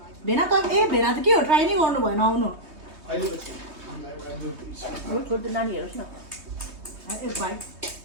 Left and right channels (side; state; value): left; late; 3.2 ms